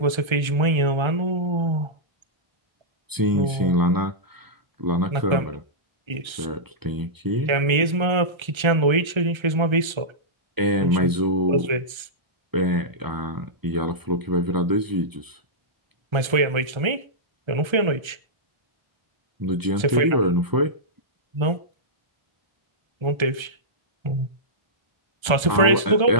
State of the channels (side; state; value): left; late; 1.3 ms